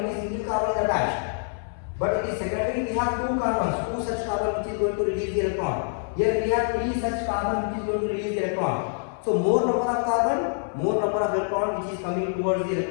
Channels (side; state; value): right; silent; 61 dB below the other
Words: single carbon is attached, but in secondary we have 2 carbons, 2 such carbon which is going to release the electron. Here we have 3 such carbon which is going to release the electron. So more number of carbon, more number of electron which is coming towards